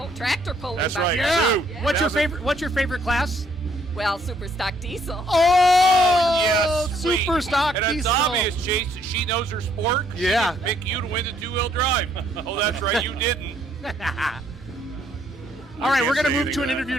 tractor pulling. That's back right. there. Sue. Yeah. What's your favorite class? Well, super stock diesel. Oh, Yes, sweet. super stock And it's diesel. obvious, Chase, that she knows her sport. She Yeah. didn't pick you to win the two-wheel drive. Oh, that's right, you didn't. All right, we're going to say move anything to an to that. interview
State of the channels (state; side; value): normal; both; correlation 0.67